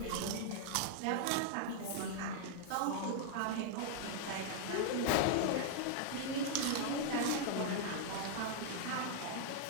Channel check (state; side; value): different; both; correlation 0.00